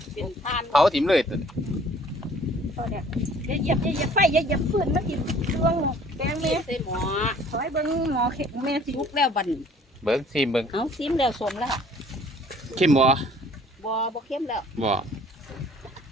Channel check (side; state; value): both; normal; correlation 0.54